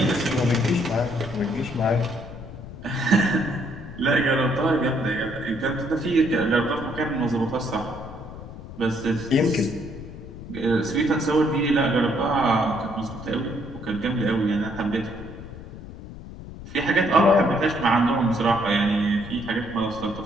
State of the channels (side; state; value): left; noise; rumble, 13 dB below the sound